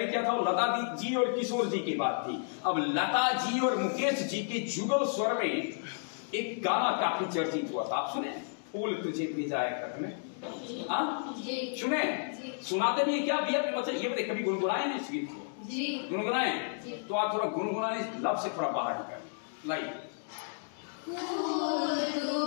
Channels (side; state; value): right; silent; digital silence